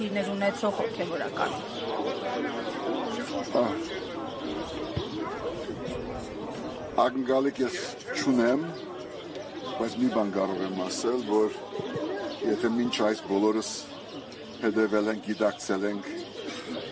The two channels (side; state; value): both; identical; correlation 1.00